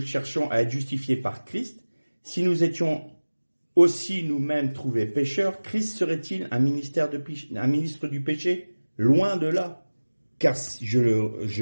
à être justifiés par Christ, si nous étions aussi nous-mêmes trouvés pécheurs, Christ serait-il un ministre du péché? Loin de là. Car si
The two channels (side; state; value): both; inverted; correlation -1.00